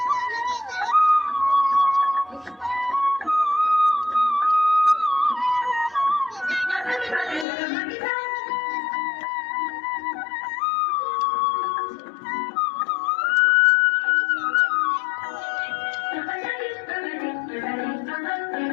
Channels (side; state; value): right; drops out; at 7.5 s